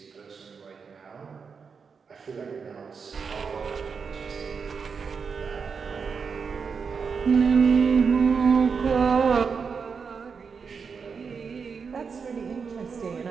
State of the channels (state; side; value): quieter; left; 5.7 dB